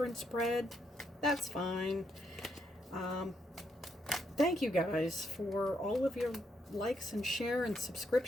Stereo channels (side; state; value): both; normal; correlation 0.77